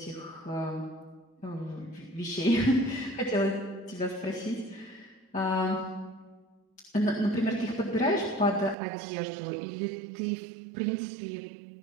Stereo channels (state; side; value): drops out; left; at 8.8 s